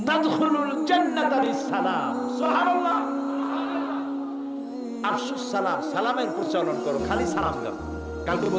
তাদখুলুল জান্নাতা বিসসালাম। সুবহানাল্লাহ। আফশুস সালাম, সালামের প্রচলন করো, খালি সালাম দাও। কালকে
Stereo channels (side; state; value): both; identical; correlation 1.00